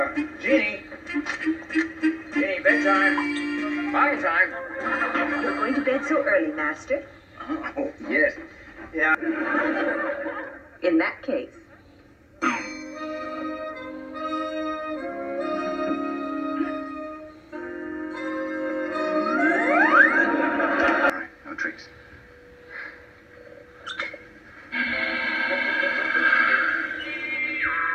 Jeannie. Jeannie, bedtime. Bottle time. You're going to bed so early, Master? Oh, yes. Yeah. In that case. No tricks.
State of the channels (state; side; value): identical; both; correlation 1.00